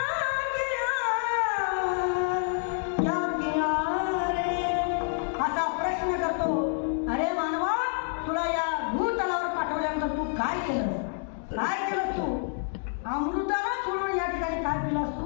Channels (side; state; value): right; silent; 59 dB below the other